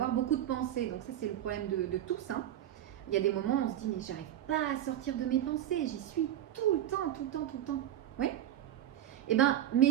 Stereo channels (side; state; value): left; quieter; 11.6 dB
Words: beaucoup de pensées. Donc, ça, c'est le problème de tous. Hein. Il y a des moments où on se dit, mais j'arrive pas à sortir de mes pensées. J'y suis tout le temps, tout le temps, tout le temps. Oui? Eh bien,